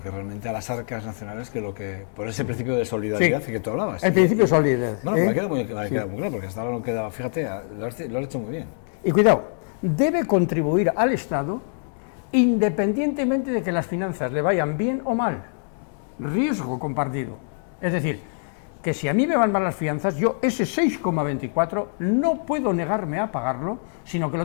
que realmente a las arcas nacionales que lo que por ese principio de solidaridad que tú hablabas. El principio de solidaridad. Bueno, me ha quedado muy claro, porque hasta ahora no quedaba, fíjate, lo has hecho muy bien. Y cuidado, debe contribuir al Estado independientemente de que las finanzas le vayan bien o mal. Riesgo compartido. Es decir, que si a mí me van mal las finanzas, yo ese 6,24 no puedo negarme a pagarlo, sino que lo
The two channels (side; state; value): right; silent; digital silence